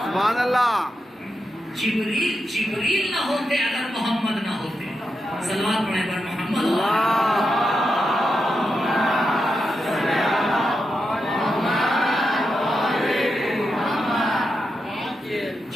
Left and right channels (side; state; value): both; normal; correlation 0.87